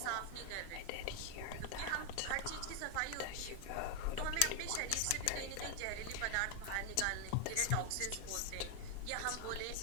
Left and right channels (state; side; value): different; both; correlation 0.01